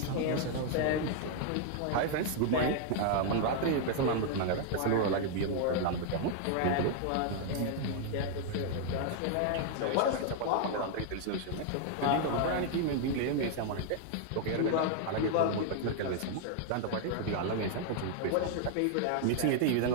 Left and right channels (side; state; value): both; different; correlation 0.00